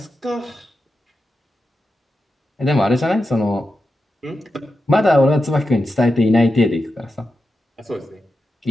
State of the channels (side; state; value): both; normal; correlation 0.90